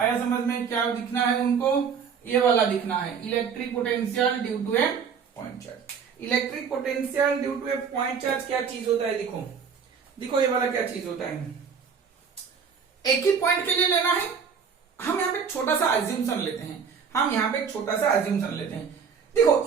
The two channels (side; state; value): left; quieter; 6.5 dB